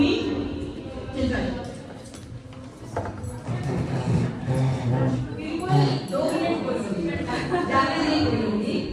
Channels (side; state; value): both; identical; correlation 1.00